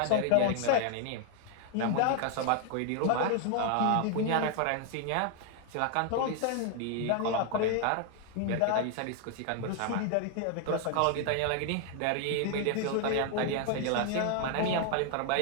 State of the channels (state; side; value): different; both; correlation 0.00